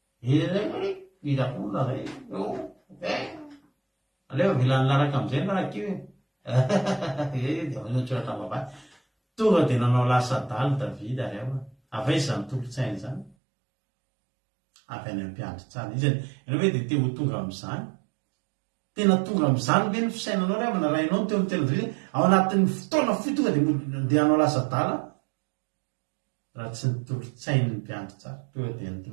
idakola zay aleo vilany laraka am'izay narakio tsoratra vavay tonga dia nanao lasa daly davida ary ao afa izy zany tolotsainy zany avy any ampiandry tsara izy ianao hoe dia te ho tonga am'izany tena tonga am'izany ve ny fisainanao ry amana rainao teo amin'ny tena davida ao anatin'ny fotoana fi tonga dia hanao lasa dala raha tsy nitolotsainy ny mpiandry tsara tonga dia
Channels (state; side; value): drops out; left; at 13.4 s